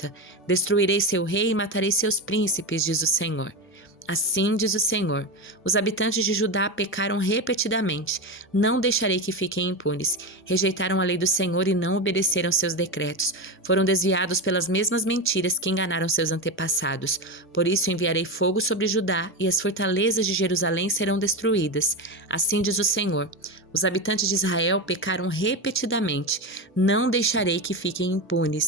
Destruirei seu rei e matarei seus príncipes, diz o Senhor. Assim diz o Senhor: os habitantes de Judá pecaram repetidamente. Não deixarei que fiquem impunes. Rejeitaram a lei do Senhor e não obedeceram seus decretos. Foram desviados pelas mesmas mentiras que enganaram seus antepassados. Por isso enviarei fogo sobre Judá e as fortalezas de Jerusalém serão destruídas. Assim diz o Senhor: os habitantes de Israel pecaram repetidamente. Não deixarei que fiquem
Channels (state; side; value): normal; both; correlation 0.18